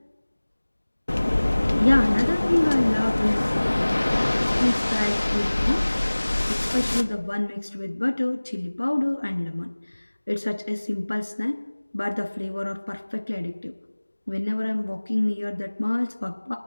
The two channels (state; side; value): inverted; both; correlation -1.00